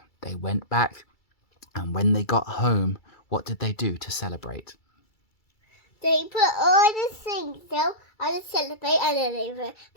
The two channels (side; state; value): right; late; 2.3 ms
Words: They went back, and when they got home, what did they do to celebrate? They put all the things down and celebrate, and then they went